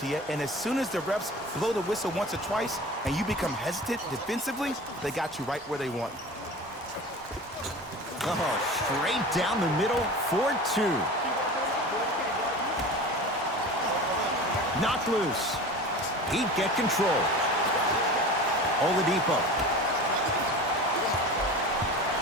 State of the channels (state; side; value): normal; both; correlation 0.35